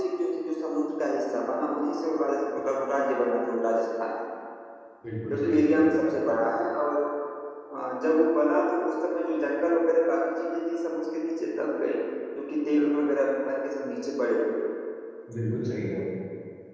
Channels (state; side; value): identical; both; correlation 1.00